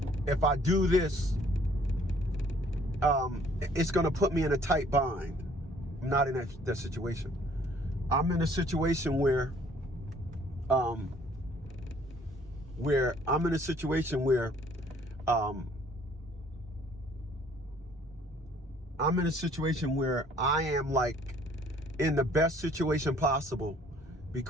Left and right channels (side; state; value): both; normal; correlation 0.59